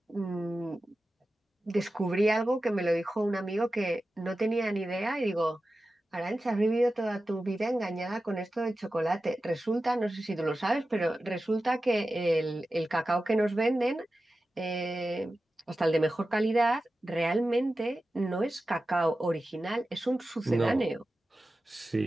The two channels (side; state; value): both; normal; correlation 0.94